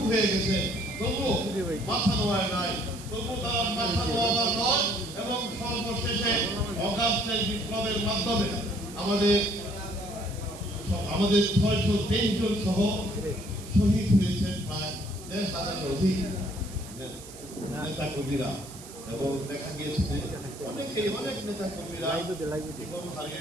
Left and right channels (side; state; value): right; noise; hiss, 16 dB below the sound